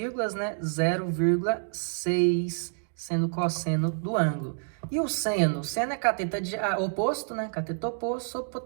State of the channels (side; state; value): left; silent; digital silence